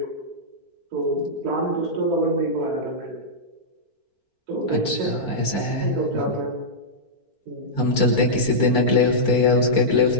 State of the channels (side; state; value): left; late; 4.5 ms